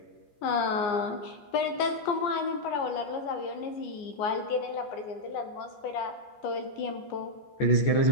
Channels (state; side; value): late; right; 15 ms